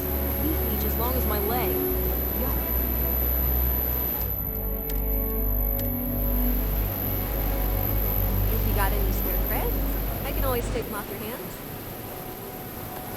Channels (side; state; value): both; identical; correlation 1.00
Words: A leaf each as long as my leg. Yuck. If you got any spare creds, I can always take them off your hands.